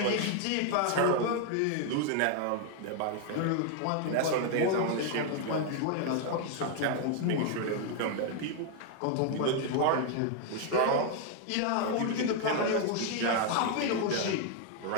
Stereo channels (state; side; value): different; both; correlation 0.00